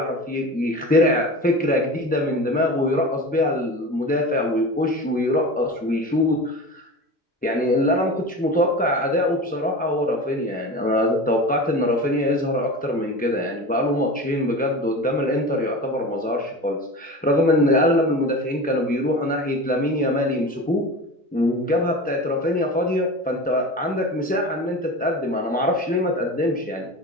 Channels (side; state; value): both; normal; correlation 0.31